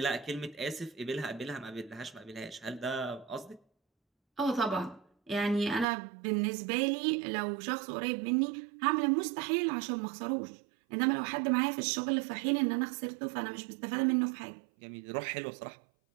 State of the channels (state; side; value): drops out; left; at 5.9 s